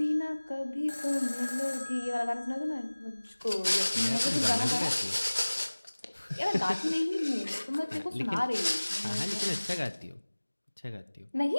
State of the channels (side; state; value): both; inverted; correlation -1.00